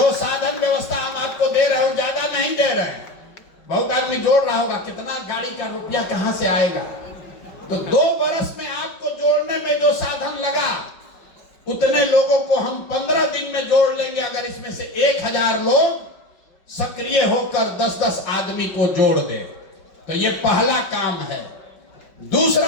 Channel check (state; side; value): late; right; 5.3 ms